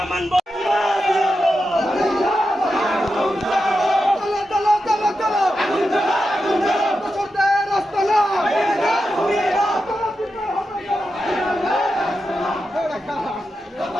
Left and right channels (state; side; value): normal; both; correlation 0.89